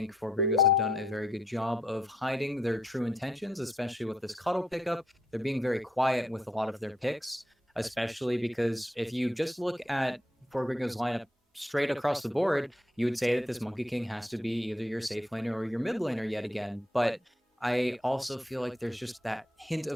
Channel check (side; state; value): both; normal; correlation 0.75